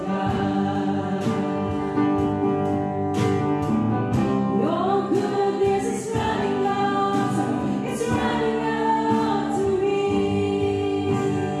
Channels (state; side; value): identical; both; correlation 1.00